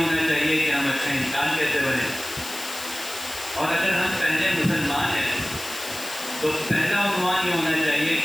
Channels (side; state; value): left; noise; hiss, 10 dB below the sound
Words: چاہیے کہ ہم اچھا انسان کیسے بنیں، اور اگر ہم پہلے مسلمان ہیں تو پہلا عنوان یہ ہونا چاہیے